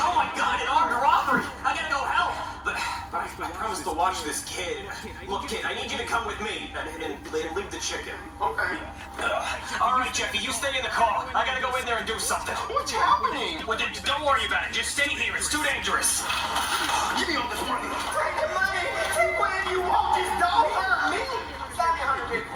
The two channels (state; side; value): identical; both; correlation 1.00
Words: Oh my God, an armed robbery. I gotta go help. But I promised to watch this kid. Look, kid, I need you to come with me and leave the chicken. Okay. All right, Jeffy, you stay in the car. I gotta go in there and do something. What's happening? Well, don't worry about it. Just stay here. It's too dangerous. Give me all this money. Take the money. Take whatever you want. Just don't hurt me. Stop me, 100